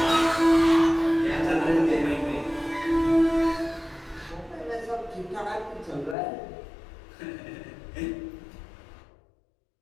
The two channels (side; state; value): right; drops out; at 6.2 s